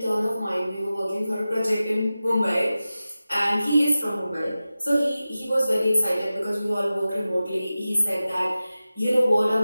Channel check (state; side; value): inverted; both; correlation -0.95